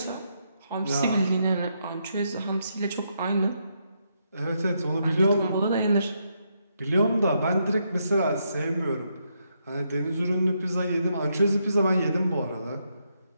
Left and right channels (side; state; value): both; inverted; correlation -0.79